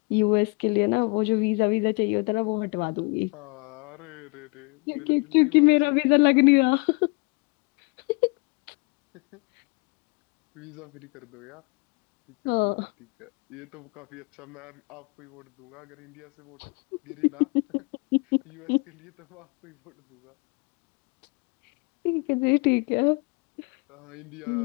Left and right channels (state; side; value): quieter; right; 29.7 dB